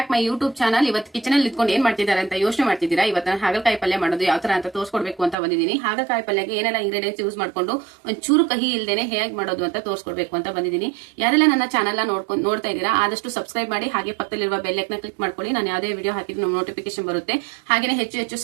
my YouTube channel. ಇವತ್ತು kitchen ಅಲ್ಲಿ ಇಟ್ಕೊಂಡು ಏನ್ ಮಾಡ್ತಿದ್ದಾರೆ ಅಂತ ಯೋಚನೆ ಮಾಡ್ತಿದ್ದೀರಾ. ಇವತ್ತು ಹಾಗಲಕಾಯಿ ಪಲ್ಯ ಮಾಡೋದು ಯಾವ ತರ ಅಂತ ತೋರಿಸ್ಕೊಡ್ಬೇಕು ಅಂತ ಬಂದಿದ್ದೀನಿ. ಹಾಗಲಕಾಯಿ ಪಲ್ಯಕ್ಕೆ ಏನೆಲ್ಲ ಇಂಗ್ರೀಡಿಯೆಂಟ್ಸ್ ಯೂಸ್ ಮಾಡ್ಕೊಂಡು ಒಂಚೂರು ಕಹಿ ಇಲ್ದೇನೆ ಹೇಗೆ ಮಾಡೋದು ಅಂತ ತೋರಿಸ್ಕೊಡ್ಬೇಕು ಅಂತ ಬಂದಿದ್ದೀನಿ. ಯಾರೆಲ್ಲ ನನ್ನ ಚಾನಲ್ ನೋಡ್ತಾ ಇದ್ದೀರಾ ಆದಷ್ಟು ಸಬ್ಸ್ಕ್ರೈಬ್ ಮಾಡಿ, ಹಾಗೆ ಪಕ್ಕದಲ್ಲಿರುವ ಬೆಲ್ ಐಕಾನ್ ಕ್ಲಿಕ್ ಮಾಡ್ಕೊಳ್ಳಿ. ನಾನು ಯಾವುದೇ ವಿಡಿಯೋ ಹಾಕಿದ್ರೆ ನೋಟಿಫಿಕೇಶನ್ ಬರುತ್ತೆ. ಹಾಗೆ ಹೆಚ್ಚು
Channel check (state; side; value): drops out; left; at 5.4 s